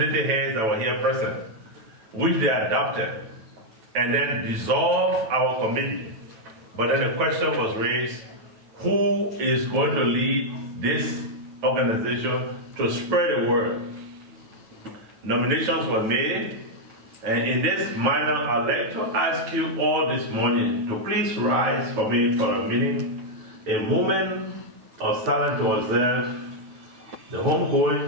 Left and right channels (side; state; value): left; late; 9.2 ms